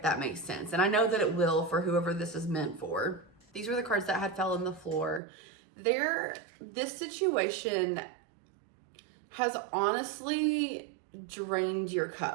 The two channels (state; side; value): drops out; left; at 5.2 s